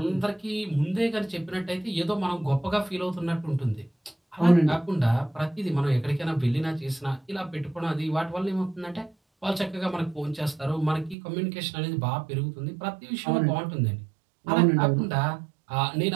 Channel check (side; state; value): left; drops out; at 11.2 s